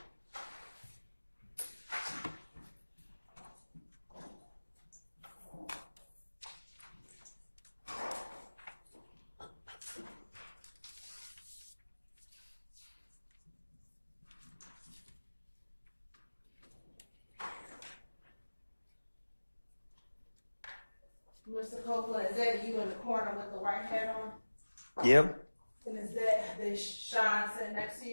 Mr. Copeland, is that you in the corner with the white hat on? Yep. And is that the Sean sitting next to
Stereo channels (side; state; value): both; inverted; correlation -1.00